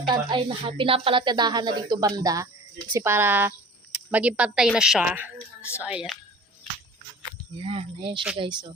Pinapalatadahan na dito banda. Kasi para maging pantay na siya. So, ayan. Ayan siya guys, oh.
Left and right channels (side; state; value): both; normal; correlation 0.42